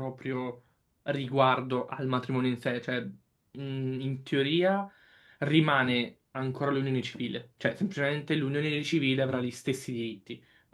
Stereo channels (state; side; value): identical; both; correlation 1.00